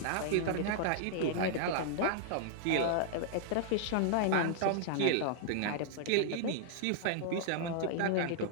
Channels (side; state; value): both; different; correlation -0.01